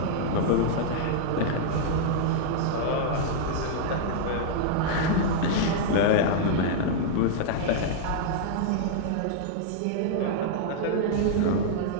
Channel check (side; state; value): both; different; correlation -0.01